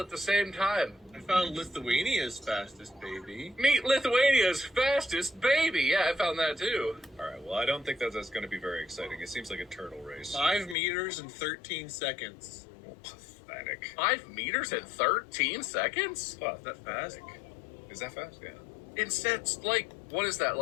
the same time. I found Lithuania's fastest baby. Meet Lithuania's fastest baby. Yeah, I found that too. All right. Well, I don't think that's going to be very exciting. It seems like a turtle race. 5 meters and 13 seconds. Oh, pathetic. 5 meters in 13 seconds? Oh, That fast? Is that fast? Yeah. Instead, like, what is that?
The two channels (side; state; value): right; drops out; at 10.8 s